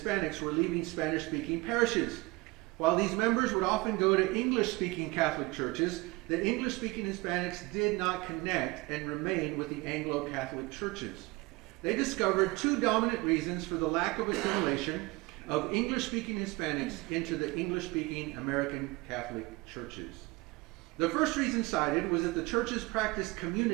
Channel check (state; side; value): quieter; left; 23.5 dB